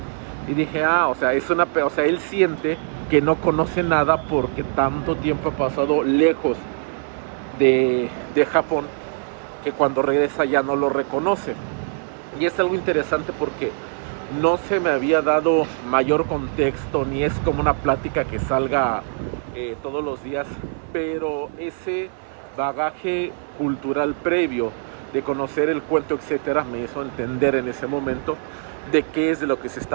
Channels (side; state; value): left; silent; 59 dB below the other